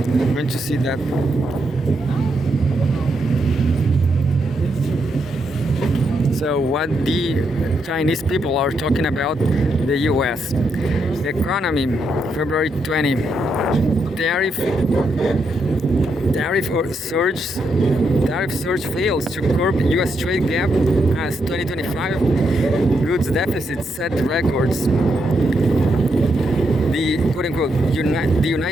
going to see that. So what the Chinese people are talking about the U.S. economy, February 20, tariff surge fails to curb U.S. trade gap as 2025 goods deficit set records. The quote-unquote the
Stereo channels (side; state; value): both; normal; correlation 0.80